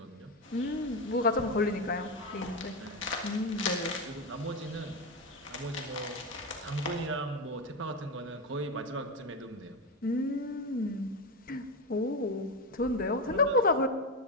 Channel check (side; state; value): both; normal; correlation 0.13